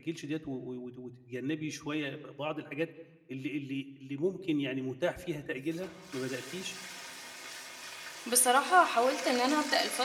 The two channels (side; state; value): both; identical; correlation 1.00